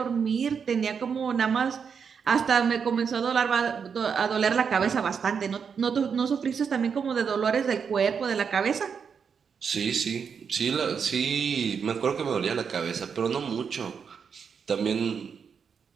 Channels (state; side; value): quieter; left; 6.5 dB